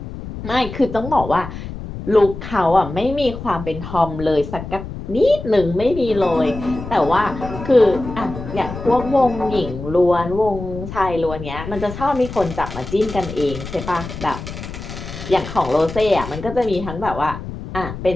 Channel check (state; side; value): noise; left; rumble, 10 dB below the sound